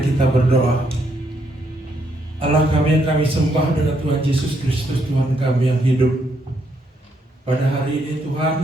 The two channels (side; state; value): both; normal; correlation 0.75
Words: berdoa. Allah kami yang kami sembah dengan Tuhan Yesus Kristus, Tuhan kami yang hidup. Pada hari ini Tuhan,